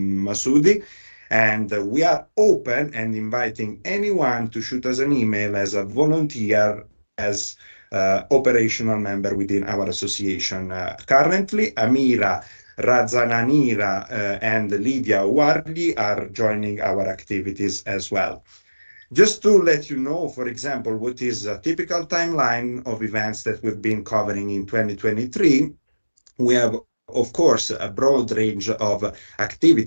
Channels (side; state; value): both; inverted; correlation -1.00